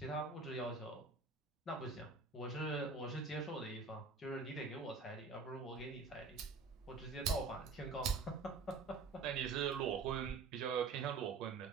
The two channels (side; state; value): left; quieter; 4.4 dB